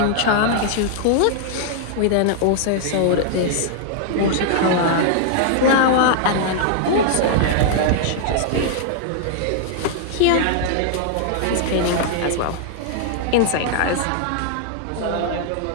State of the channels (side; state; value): both; different; correlation -0.01